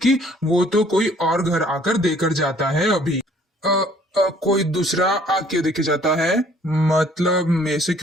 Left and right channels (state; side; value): normal; both; correlation 0.58